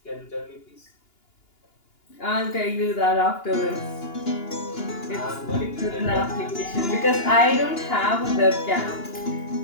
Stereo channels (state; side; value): late; right; 2.9 ms